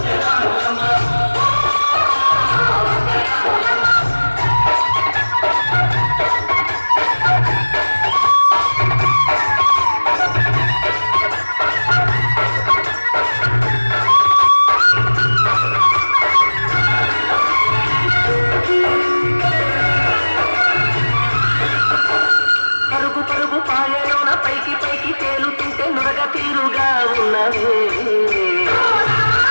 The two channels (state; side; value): inverted; both; correlation -1.00